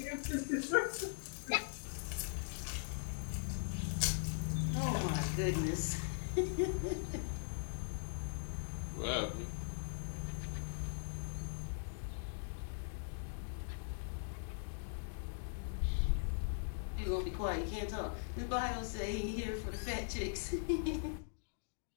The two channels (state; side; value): silent; right; digital silence